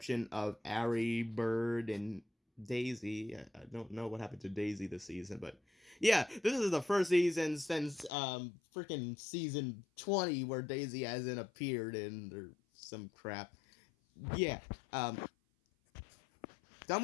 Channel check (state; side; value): drops out; right; at 8.1 s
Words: of Ari, Bird, and Daisy. I don't know what happened to Daisy this season, but yeah, this is the first season since freaking season 20 where Daisy hasn't appeared in or some crap. Yeah, done